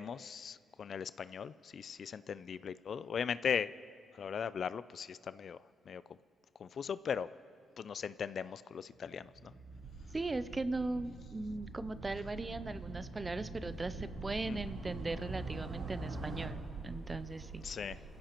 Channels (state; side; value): normal; both; correlation 0.82